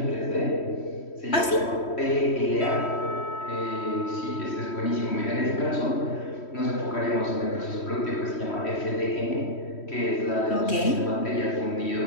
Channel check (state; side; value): late; right; 3.1 ms